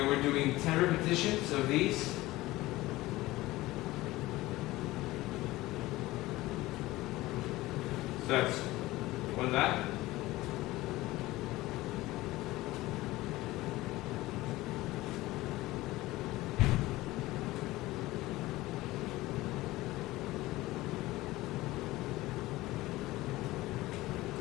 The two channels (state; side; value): quieter; right; 18.4 dB